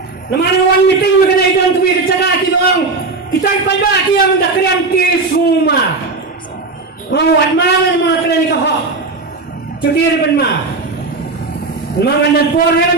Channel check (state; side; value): quieter; left; 3.7 dB